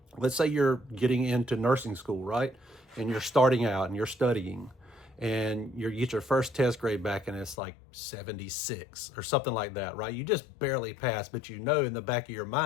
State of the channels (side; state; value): right; drops out; at 7.6 s